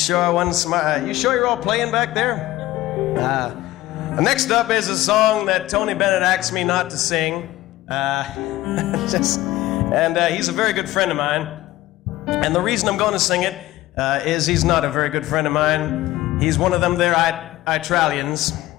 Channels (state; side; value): quieter; right; 16.5 dB